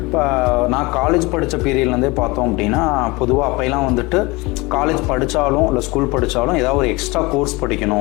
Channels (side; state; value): right; quieter; 24.0 dB